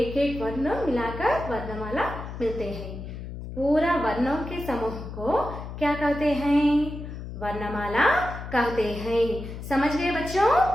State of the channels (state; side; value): noise; left; hum, 9 dB below the sound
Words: एक वर्ण मिलाकर वर्णमाला मिलते हैं। पूरा वर्णों के समूह को क्या कहते हैं? वर्णमाला कहते हैं। समझ गए बच्चों?